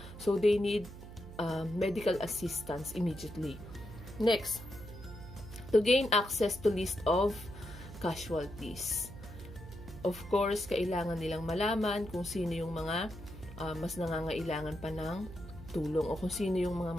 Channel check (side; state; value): right; noise; hum, 14 dB below the sound